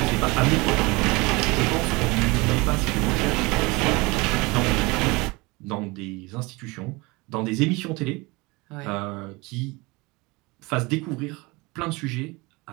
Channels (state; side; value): quieter; left; 24.6 dB